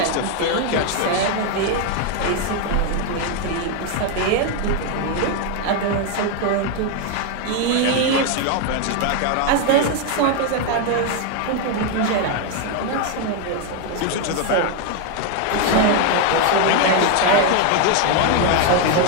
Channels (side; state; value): both; different; correlation 0.01